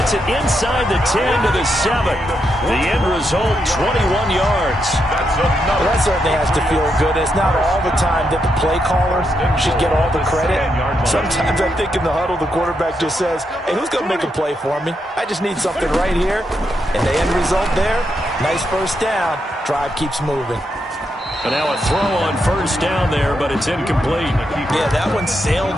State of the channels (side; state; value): both; normal; correlation 0.82